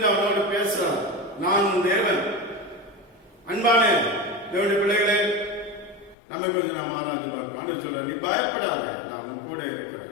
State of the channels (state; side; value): drops out; right; at 6.2 s